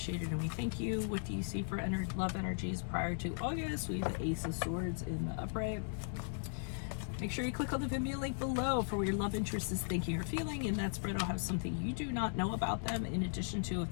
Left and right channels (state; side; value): silent; right; digital silence